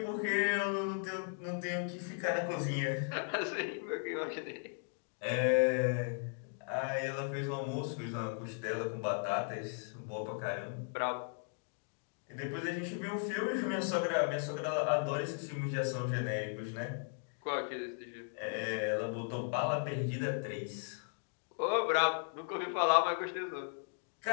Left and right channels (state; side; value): silent; right; 53 dB below the other